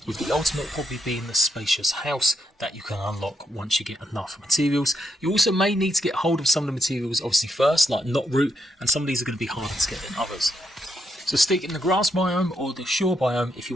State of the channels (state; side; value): normal; both; correlation 0.79